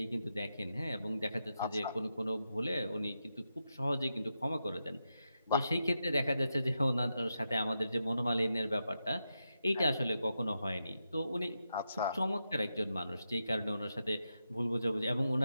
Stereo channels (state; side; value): inverted; both; correlation -0.87